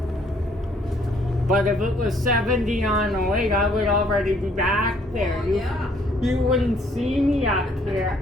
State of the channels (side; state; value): both; normal; correlation 0.64